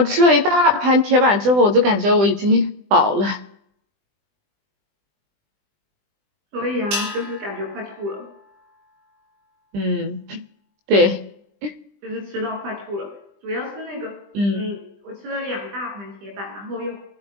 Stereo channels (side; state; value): left; late; 20 ms